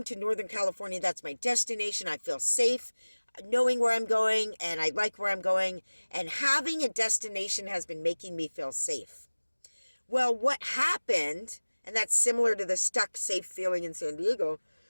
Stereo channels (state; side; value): inverted; both; correlation -1.00